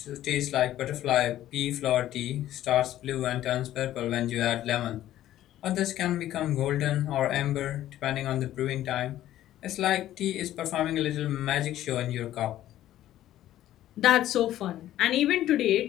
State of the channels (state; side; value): quieter; right; 13.2 dB